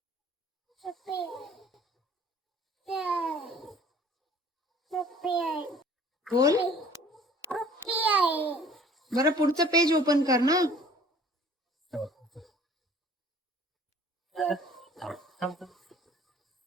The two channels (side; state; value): both; normal; correlation 0.51